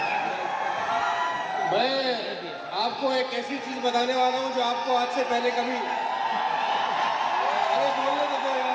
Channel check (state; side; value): identical; both; correlation 1.00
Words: मैं आपको एक ऐसी चीज बताने वाला हूं जो आपको आज से पहले कभी, अरे बोलने तो दो